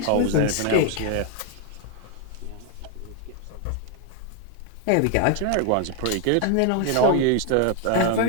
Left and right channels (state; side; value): different; both; correlation 0.00